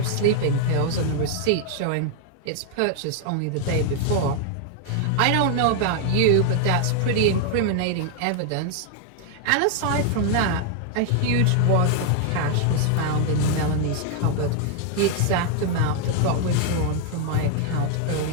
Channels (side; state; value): both; different; correlation 0.00